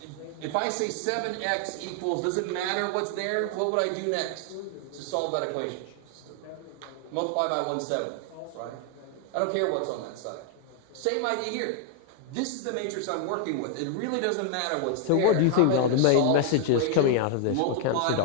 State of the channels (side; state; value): both; different; correlation 0.00